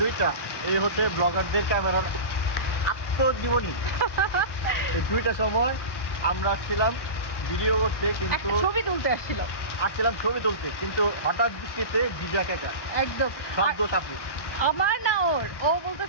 2টা, এই হতে ব্লগারদের ক্যামেরার আত্মজীবনী। এই 2টার সময় আমরা ছিলাম ভিডিও করতে, কিন্তু ছবি তুলতে আসছিলাম, কিন্তু হঠাৎ বৃষ্টিতে ভিজা কাকা একদম শব্দ চাপু। আমার না ওর, ও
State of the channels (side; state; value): right; late; 1.1 ms